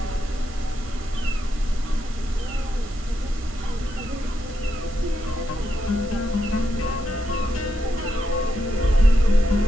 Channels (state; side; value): normal; both; correlation 0.83